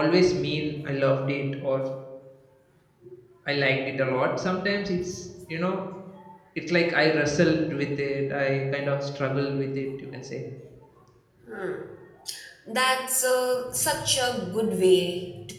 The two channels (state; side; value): identical; both; correlation 1.00